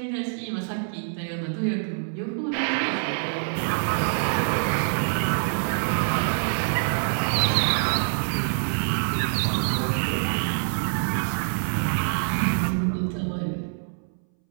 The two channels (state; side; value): silent; left; 61 dB below the other